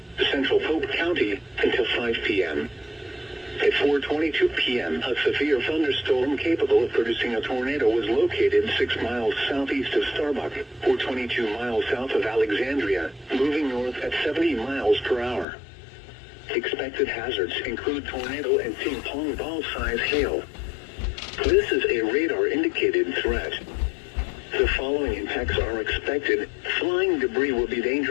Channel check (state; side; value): drops out; right; at 15.5 s